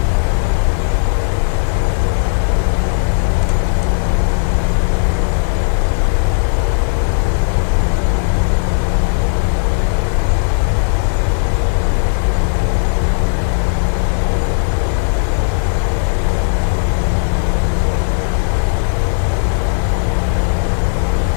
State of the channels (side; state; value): right; silent; 61 dB below the other